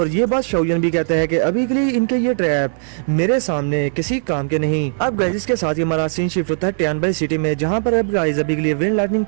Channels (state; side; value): silent; left; digital silence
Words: ये बात शाओयन भी कहता है कि अभी के लिए इनके ये ट्रैप मेरे सामने किसी काम के नहीं। अब गाइस इसके साथ ही हमारा सीन शिफ्ट होता है टियानबाई सिटी में, जहां पर अब गाइस अभी के लिए विंड लाइटनिंग